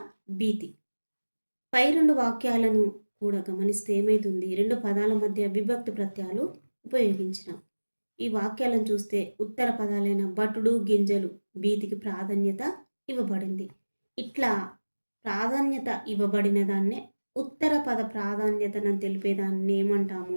భీతి. పై రెండు వాక్యాలను కూడా గమనిస్తే ఏమైతుంది? రెండు పదాల మధ్య విభక్తి ప్రత్యయాలు ఉపయోగించిన. ఈ వాక్యాలను చూస్తే ఉత్తర పదాలైన భటుడు గింజలు భీతికి ప్రాధాన్యత ఇవ్వబడింది. ఇట్లా ప్రాధాన్యత ఇవ్వబడిన దాన్నే ఉత్తర పద ప్రాధాన్యతను తెలిపేదాన్ని ఏమంటాము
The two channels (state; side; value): inverted; both; correlation -1.00